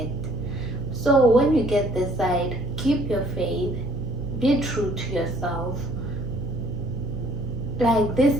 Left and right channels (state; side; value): noise; right; hum, 8 dB below the sound